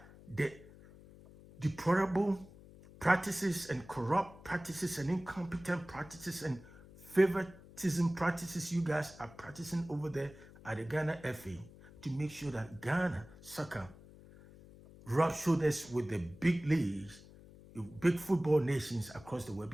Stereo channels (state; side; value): noise; left; hum, 20 dB below the sound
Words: the deplorable practices and corrupt practices and incompetent practices and favoritism practices you guys are practicing over there at the Ghana FA, to make sure that Ghana soccer rub shoulders with the big leagues, the big football nations across the world.